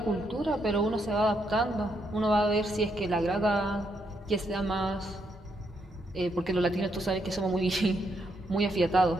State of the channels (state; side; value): normal; both; correlation 0.77